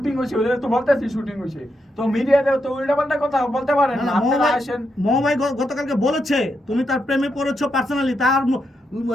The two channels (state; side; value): normal; both; correlation 0.83